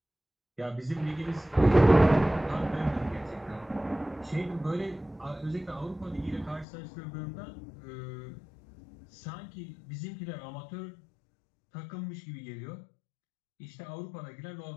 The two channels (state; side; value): drops out; right; at 6.7 s